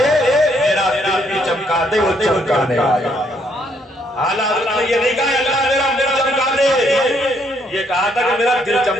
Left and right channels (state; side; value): normal; both; correlation 0.70